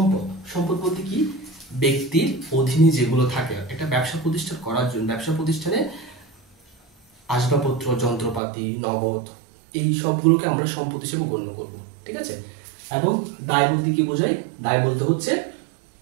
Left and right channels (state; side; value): drops out; left; at 8.4 s